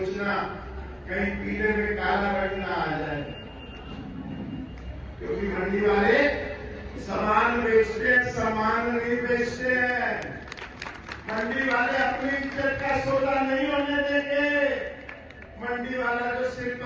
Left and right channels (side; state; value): both; identical; correlation 1.00